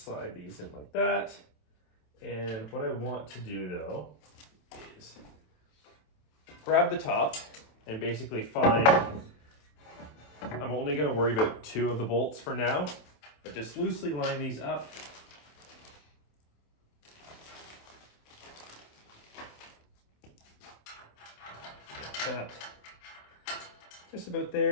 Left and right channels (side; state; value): right; late; 27 ms